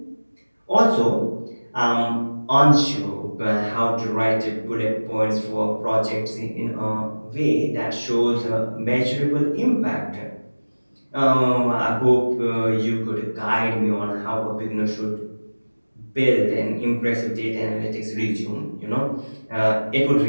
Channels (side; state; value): both; inverted; correlation -1.00